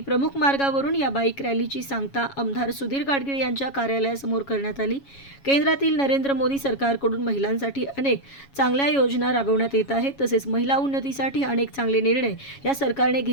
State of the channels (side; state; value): right; late; 7.2 ms